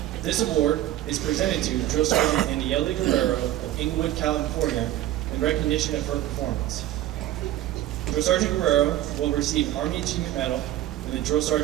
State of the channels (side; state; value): left; quieter; 13.9 dB